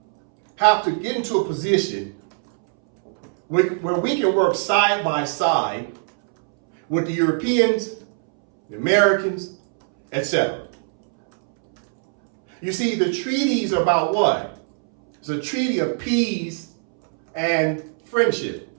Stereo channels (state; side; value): silent; left; 65 dB below the other